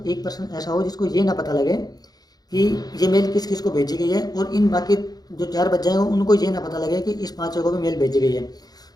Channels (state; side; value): late; right; 0.19 ms